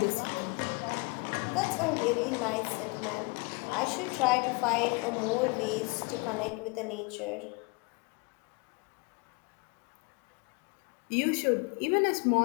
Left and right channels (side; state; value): right; quieter; 29.5 dB